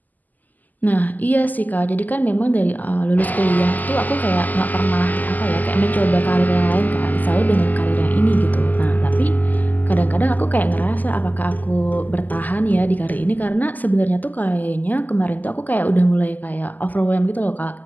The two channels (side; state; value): right; late; 0.083 ms